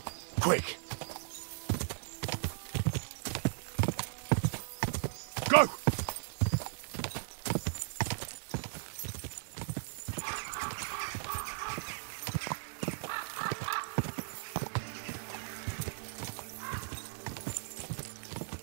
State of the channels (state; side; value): silent; left; digital silence